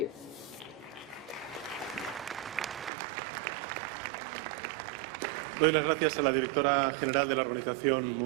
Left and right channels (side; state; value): left; drops out; at 2.9 s